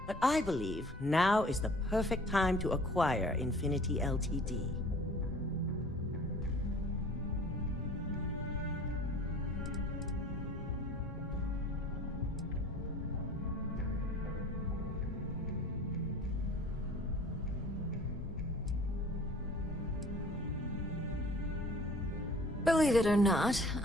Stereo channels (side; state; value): both; normal; correlation 0.48